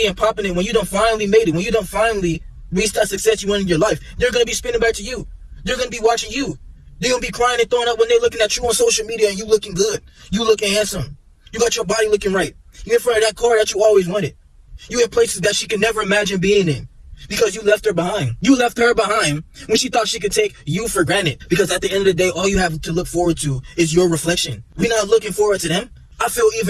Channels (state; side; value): identical; both; correlation 1.00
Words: and popping it, when you done finally made it, when you done finally reached that success you want in your life, they're going to be spinning back to you. They're going to be watching you. They're going to be crying and throwing up when they're looking at you on social media and you looking good. You looking handsome. You got your body looking right. You're in front of that car that you always wanted. You in places that she could never imagine being in because you left her behind. You left her behind when she thought she could take you for granted, because at the end of the day, all you have to look forward to is your reflection. We're not looking forward to them. I feel